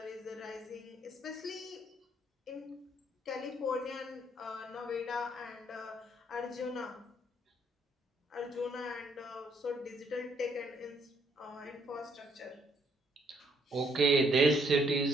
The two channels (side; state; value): both; normal; correlation 0.69